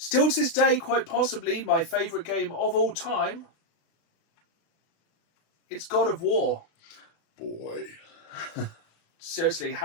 to this day, quite possibly my favourite game of all time, it's God of War. Boy. Seriously,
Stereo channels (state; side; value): late; right; 36 ms